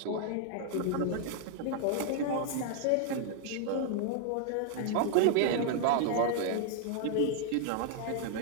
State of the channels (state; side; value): different; both; correlation 0.00